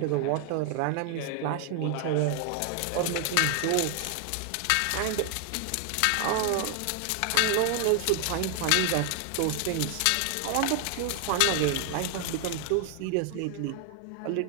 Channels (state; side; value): different; both; correlation 0.00